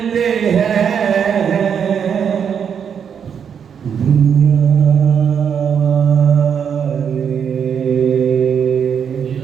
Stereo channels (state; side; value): quieter; left; 7.5 dB